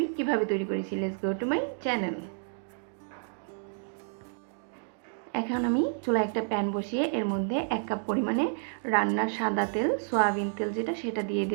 কীভাবে তৈরি করেছি। Let's go to my channel. এখন আমি চুলায় একটা প্যান বসিয়ে এর মধ্যে 1 কাপ পরিমাণে রান্নার সাদা তেল, সয়াবিন তেল যেটা, সেটা দিয়ে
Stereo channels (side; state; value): left; silent; digital silence